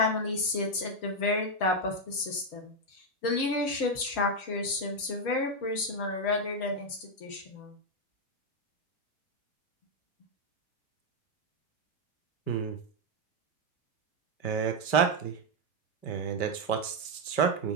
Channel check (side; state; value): right; late; 5.2 ms